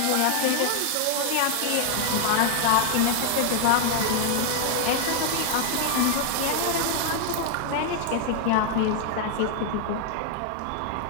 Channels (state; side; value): different; both; correlation 0.00